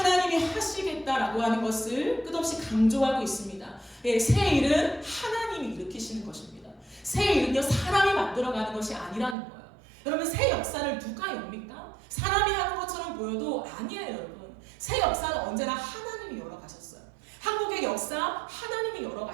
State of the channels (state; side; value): drops out; left; at 9.3 s